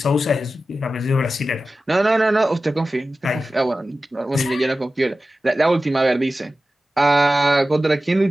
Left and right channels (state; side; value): normal; both; correlation 0.94